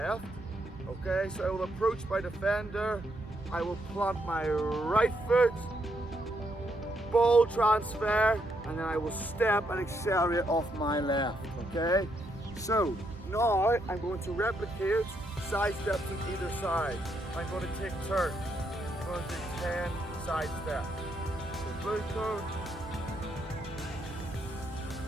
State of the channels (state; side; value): normal; both; correlation 0.77